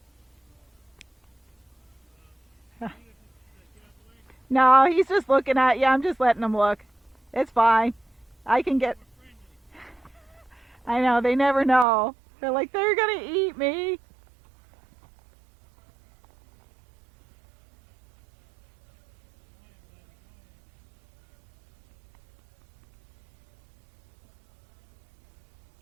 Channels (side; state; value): left; drops out; at 11.9 s